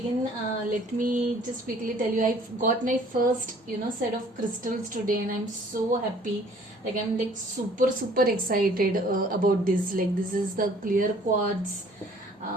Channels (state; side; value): normal; both; correlation 0.56